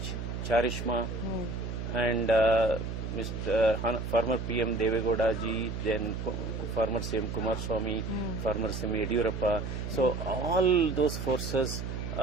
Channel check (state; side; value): noise; right; hum, 5 dB below the sound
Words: charisma, and former PM Deve Gowda ji, then former CM Kumaraswamy, former CM Yediyurappa. So all those forces